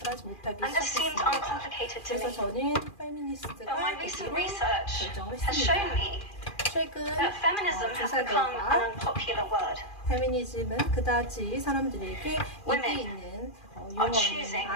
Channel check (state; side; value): late; right; 2.4 ms